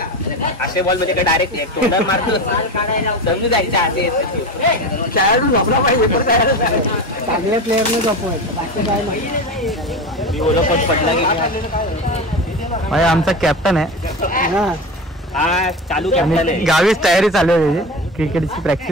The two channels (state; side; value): normal; both; correlation 0.26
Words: असे बॉल मध्ये डायरेक्ट तोंडावर मारतो समजू जायच्या आधी खेळाडू झोपला पाहिजे, चांगल्या प्लेअरने झोपवायचं, बाकी काय नाही. मी ओला पण पडला की भाई आमचा कॅप्टन आहे. हा चालू कॅप्टन आहे. गावीच तयारी चालू आहे त्याची क्रिकेटची